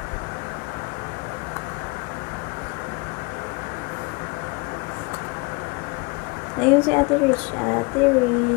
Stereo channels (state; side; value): quieter; right; 28.7 dB